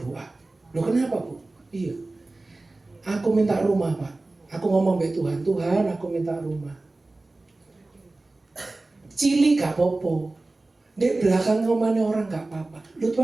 Loh kenapa, Bu? Iya. Aku minta rumah, Pak. Aku ngomong sama Tuhan, Tuhan aku minta rumah. Cili gak apa-apa. Di belakang rumahnya orang gak apa-apa. Lu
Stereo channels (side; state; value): left; quieter; 3.1 dB